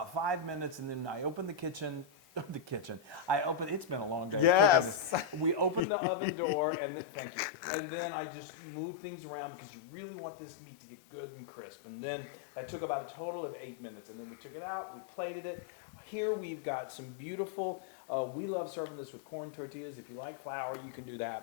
5 minutes, and then I opened the kitchen. It's been a long day cooking this. We opened the oven door, and thank you. And then I just moved things around because you really want this meat to get good and crisp. And then that took about a total of 8 minutes. And then we took it out, we plated it. Here we've got some beautiful, we love serving this with corn tortillas. If you like flour, you can do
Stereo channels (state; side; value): drops out; right; at 5.8 s